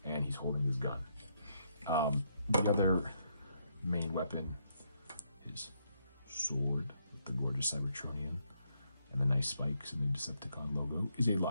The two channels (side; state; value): both; inverted; correlation -0.76